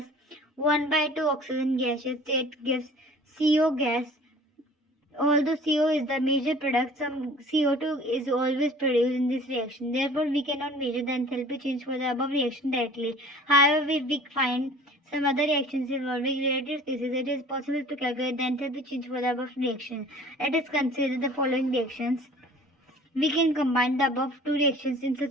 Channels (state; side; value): normal; both; correlation 0.47